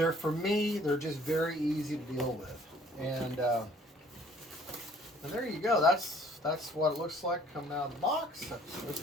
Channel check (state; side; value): normal; both; correlation 0.57